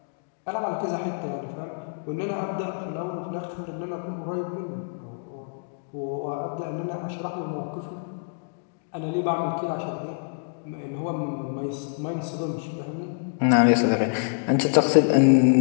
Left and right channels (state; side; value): silent; right; digital silence